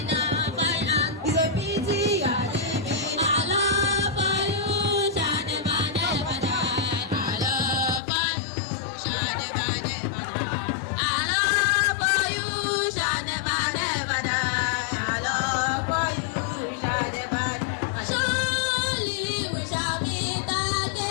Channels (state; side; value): drops out; right; at 8.0 s